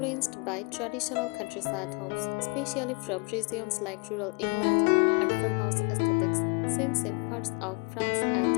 by traditional countryside homes, especially from regions like rural England and farmhouse aesthetics, seen in parts of France and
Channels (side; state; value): right; quieter; 29.1 dB